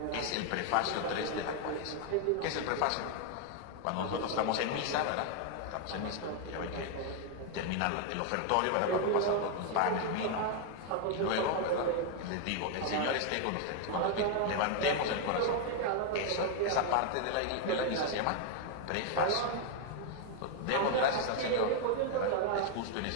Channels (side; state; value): both; different; correlation 0.00